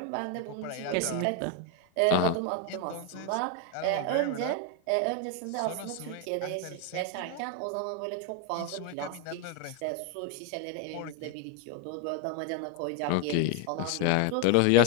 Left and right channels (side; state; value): both; different; correlation 0.01